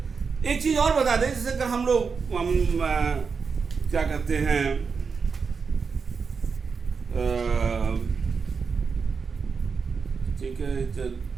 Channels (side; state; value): left; quieter; 5.4 dB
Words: एक चीज और बता दें, जैसे अगर हम लोग क्या कहते हैं, ठीक है, चल,